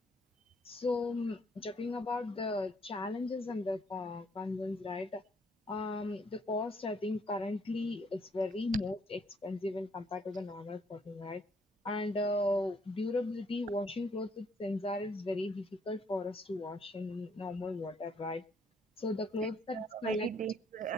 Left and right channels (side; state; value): both; normal; correlation 0.68